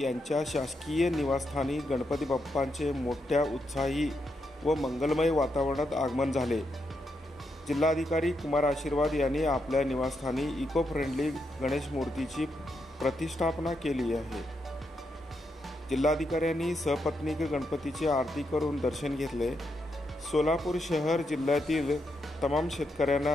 शासकीय निवासस्थानी गणपती बाप्पांचे मोठ्या उत्साही व मंगलमय वातावरणात आगमन झाले। जिल्हाधिकारी कुमार आशीर्वाद यांनी आपल्या निवासस्थानी इको फ्रेंडली गणेश मूर्तीची प्रतिष्ठापना केली आहे। जिल्हाधिकाऱ्यांनी सपत्नीक गणपतीची आरती करून दर्शन घेतले। सोलापूर शहर जिल्ह्यातील तमाम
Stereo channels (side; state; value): both; normal; correlation 0.82